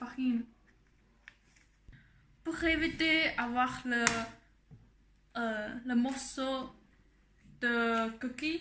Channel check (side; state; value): both; identical; correlation 1.00